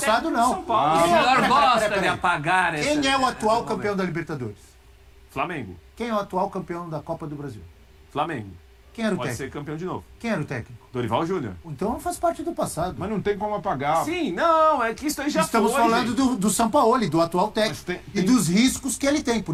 técnico não. do São Paulo. o senhor peraí, gosta peraí. de apagar esse... Quem é o atual esse campeão momento. da Libertadores? Flamengo. Quem é o atual campeão da Copa do Brasil? Flamengo. Quem era o Pode técnico? ser campeão de novo. Quem era o técnico? Dorival Júnior. Então faz parte do passado. Mas não tem como apagar. Sim, não, é que isso aí já Estamos foi, falando gente. do Sampaoli, do atual técnico. Mas E dos riscos que ele tem.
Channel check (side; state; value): both; identical; correlation 1.00